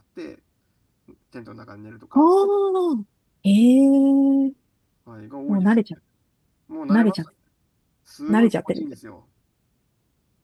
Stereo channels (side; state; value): both; identical; correlation 1.00